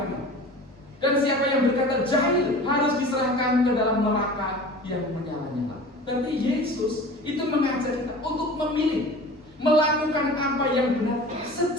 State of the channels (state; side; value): normal; both; correlation 0.39